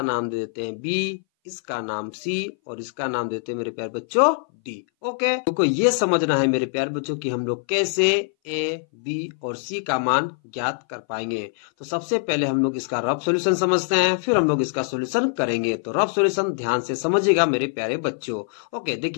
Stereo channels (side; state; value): right; silent; 60 dB below the other